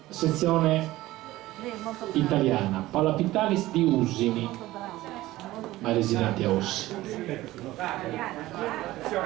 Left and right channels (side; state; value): left; quieter; 17.0 dB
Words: sezione italiana. Paola Pitalis di Usini, ma residenti a Ossi.